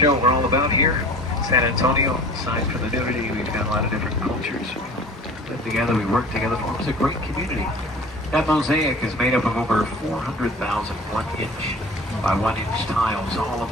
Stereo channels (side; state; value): both; normal; correlation 0.42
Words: what we're all about here. San Antonio, aside from the nudity, we've got a lot of different cultures. We live together, we work together, forms a great community. That mosaic is made up of over 400,000 1-inch by 1-inch tiles. All of